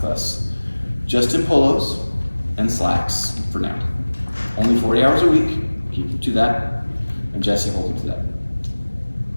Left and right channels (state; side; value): inverted; both; correlation -1.00